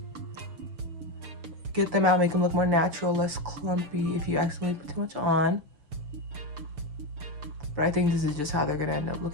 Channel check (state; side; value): late; left; 6.5 ms